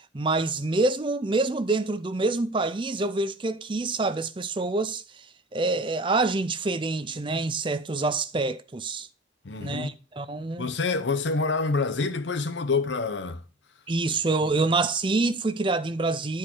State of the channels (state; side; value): normal; both; correlation 0.39